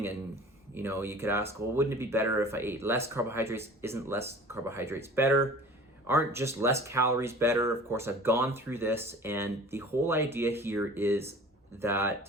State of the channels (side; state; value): both; normal; correlation 0.43